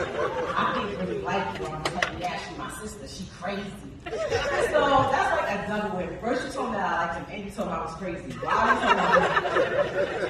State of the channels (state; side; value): identical; both; correlation 1.00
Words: I think they really like you. I'm gonna tell you, yeah, she's my sister. She crazy. So that's like a double win. First you told me that I liked him, and you told me I was crazy. Why would